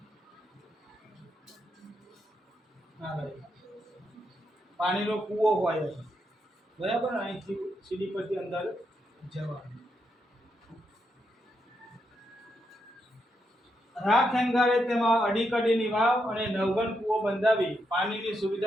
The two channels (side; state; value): both; normal; correlation 0.81